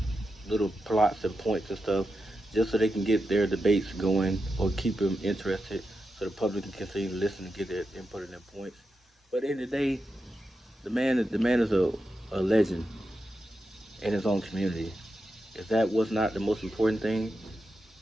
little plots and points and stuff, just so they can get their debates going or keep them interested, so the public can continue to listen and get their input and their points. But at the end of the day, the man is a a legend in his own community. If that was not the most important thing,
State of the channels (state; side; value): normal; both; correlation 0.88